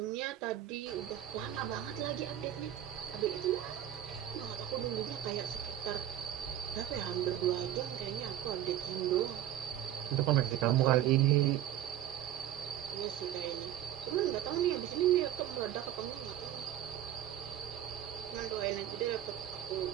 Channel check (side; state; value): left; quieter; 11.8 dB